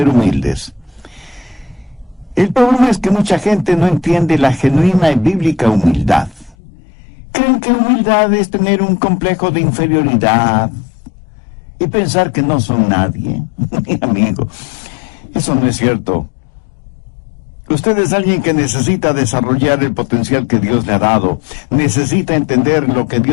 humildes. El problema es que mucha gente no entiende la genuina y bíblica humildad. Creen que humildad es tener un complejo de inferioridad y pensar que no son nadie. Mi amigo, eso no es cierto. Usted es alguien que necesita desarrollar el potencial que Dios le ha dado. Necesita entender lo que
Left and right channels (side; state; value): right; drops out; at 6.6 s